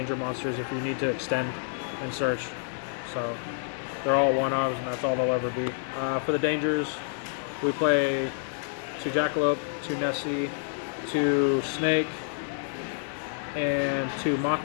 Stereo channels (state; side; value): silent; right; 59 dB below the other